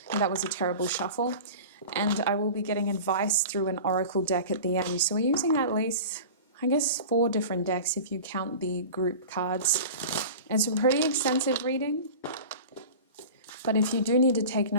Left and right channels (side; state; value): both; inverted; correlation -0.35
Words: That was a terrible shuffle. And I will be getting advice through an oracle deck at the end. So we're using at least, I guess, 4 different decks if you count the group cards. It's a pretty extensive reading. But if you do need to take